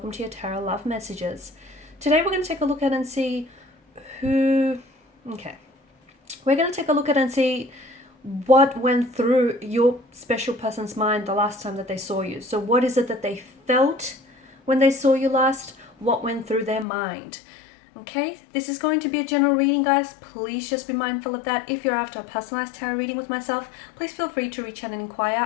to your Tarot Love Messages. Today we're going to take a look at and see who... We're going to take a look at and see what went through your special person's mind the last time that they saw you. So what is it that they felt when they saw you last? What went through their mind? Okay, this is going to be a general reading, guys. Please just be mindful of that. If you're after a personalized tarot reading with myself, please feel free to reach out and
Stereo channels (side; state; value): right; drops out; at 16.9 s